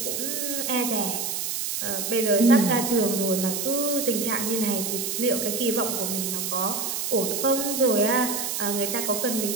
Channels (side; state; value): right; noise; hiss, 2 dB below the sound